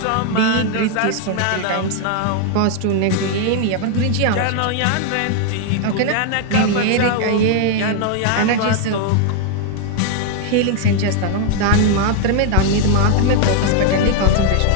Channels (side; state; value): both; different; correlation 0.00